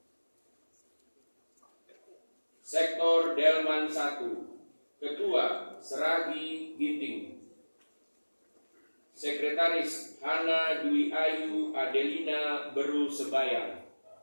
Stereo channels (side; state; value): both; inverted; correlation -1.00